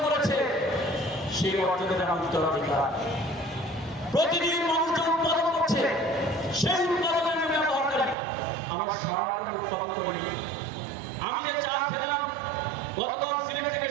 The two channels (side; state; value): left; drops out; at 8.2 s